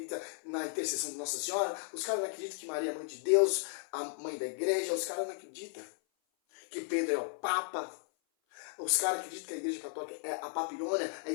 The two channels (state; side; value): silent; right; 54 dB below the other